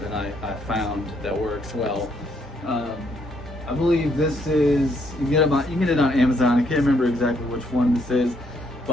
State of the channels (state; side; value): normal; both; correlation 0.71